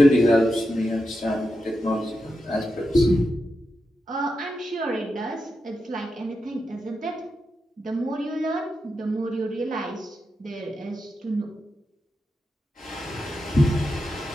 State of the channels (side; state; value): both; normal; correlation 0.88